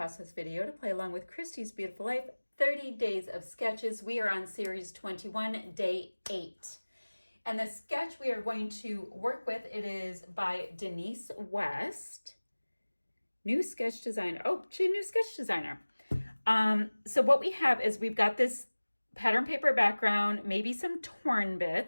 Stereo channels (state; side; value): inverted; both; correlation -1.00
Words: video to play along with Christy's Beautiful Life, 30 Days of Sketches. We are on series 21, day 8. And the sketch we are going to work with, it is by Denise West. New sketch designer. Oh, she's a new sketch designer. So what we have is we've got this pattern paper background, maybe some torn